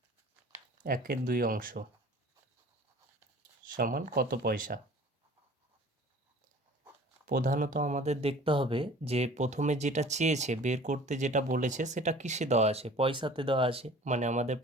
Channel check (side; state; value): both; normal; correlation 0.47